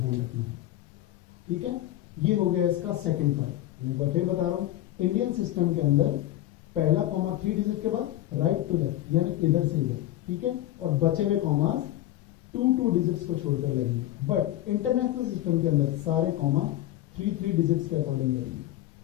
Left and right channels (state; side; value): quieter; right; 14.4 dB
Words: रखना है. ठीक है? ये हो गया इसका सेकंड पार्ट. मैं एक बार फिर बता रहा हूं, इंडियन सिस्टम के अंदर पहला कॉमा 3 डिजिट के बाद राइट टू लेफ्ट यानी इधर से इधर ठीक है, और बचे हुए कॉमास 2 डिजिट्स को छोड़कर लगेंगे। बट इंटरनेशनल सिस्टम के अंदर सारे कॉमा 3 डिजिट्स के अकॉर्डिंग लगेंगे,